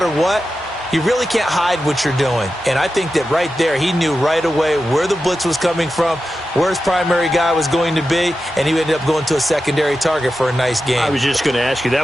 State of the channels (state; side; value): normal; both; correlation 0.91